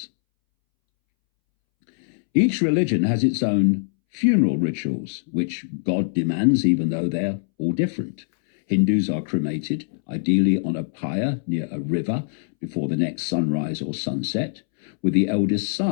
Each religion has its own funeral rituals, which God demands, even though they're all different. Hindus are cremated, ideally on a pyre near a river before the next sunrise or sunset, with the eldest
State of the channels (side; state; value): right; silent; 64 dB below the other